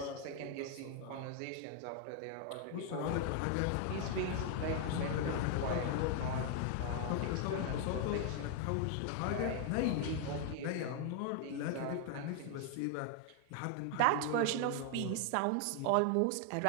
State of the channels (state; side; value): different; both; correlation 0.00